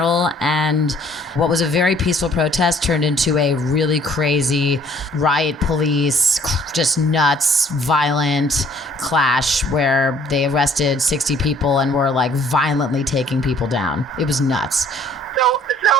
And what was a very peaceful protest turned into a really crazy riot police, just nuts, violent clash where they arrested 60 people and were like violently taking people down. It was nuts. So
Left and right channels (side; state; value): both; normal; correlation 0.58